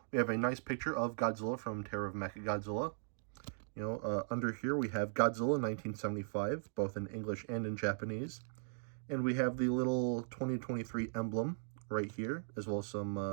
we have a nice picture of Godzilla from Terror of Mechagodzilla. Under here we have Godzilla 1975, both in English and in Japanese. And we have the little 2023 emblem right here, as well as some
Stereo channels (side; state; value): left; silent; digital silence